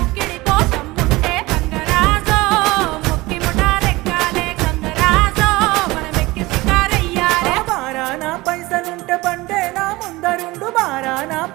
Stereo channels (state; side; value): quieter; left; 20.9 dB